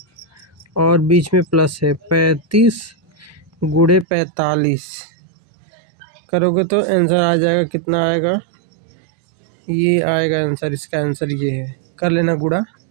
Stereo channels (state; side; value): drops out; left; at 4.0 s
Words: और बीच में प्लस है 35 गुणे 45 करोगे तो आंसर आ जाएगा। कितना आएगा, ये आएगा आंसर, इसका आंसर ये है। कर लेना गुणा,